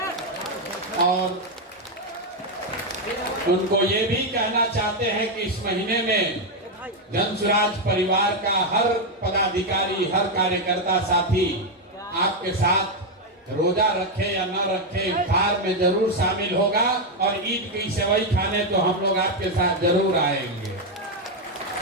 और उनको ये भी कहना चाहते हैं कि इस महीने में जन स्वराज परिवार का हर पदाधिकारी, हर कार्यकर्ता साथी आपके साथ रोजा रखे या न रखे इफ्तार में जरूर शामिल होगा और ईद की सेवई खाने तो हम लोग आपके साथ जरूर आएंगे।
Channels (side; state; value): both; normal; correlation 0.04